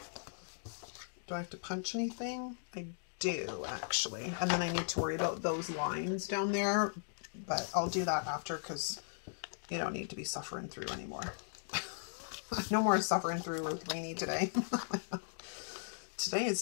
Do I have to punch anything? I do, actually. And then I need to worry about those lines down there, but I'll do that after because you don't need to be suffering through anymore. No more suffering through with Rainy today. Today is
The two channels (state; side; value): silent; right; digital silence